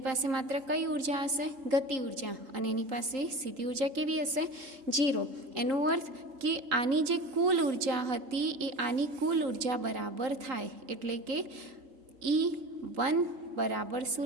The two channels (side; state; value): left; late; 3.9 ms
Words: પાસે માત્ર કઈ ઉર્જા હશે? ગતિ ઉર્જા. અને એની પાસે સ્થિતિ ઉર્જા કેવી હશે? 0. એનો અર્થ કે આની જે કુલ ઉર્જા હતી એ આની કુલ ઉર્જા બરાબર થાય. એટલે કે E1 બરાબર શું